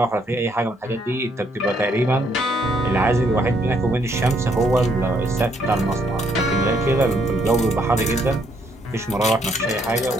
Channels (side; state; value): both; normal; correlation 0.71